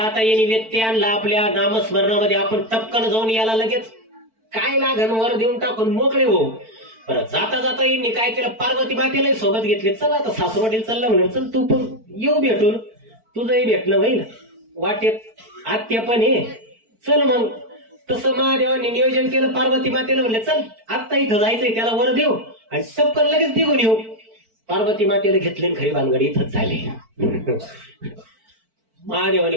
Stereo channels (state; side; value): late; left; 4.5 ms